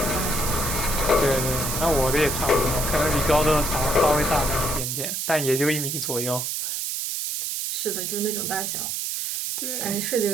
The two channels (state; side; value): noise; right; hiss, 2 dB below the sound